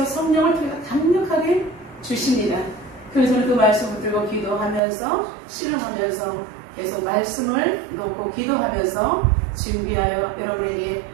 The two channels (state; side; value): drops out; left; at 4.8 s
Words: 성령을 통해 강력하게 주십니다. 그래서 저는 그 말씀을 들고 기도하면서 씨름하면서 계속 말씀을 놓고 기도하면서 준비하여 여러분에게